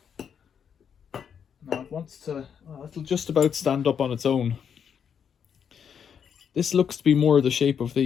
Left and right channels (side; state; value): right; quieter; 7.6 dB